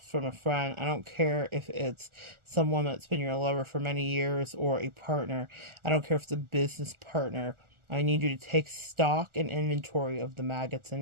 from a friend. I don't care if it's someone that's been your lover for many years or a partner. I don't care if it's a business partner. I need you to take stock and inventory of the maggots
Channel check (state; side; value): late; left; 1.4 ms